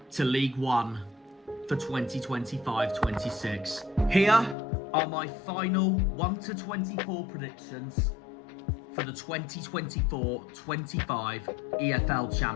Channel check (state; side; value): drops out; right; at 4.5 s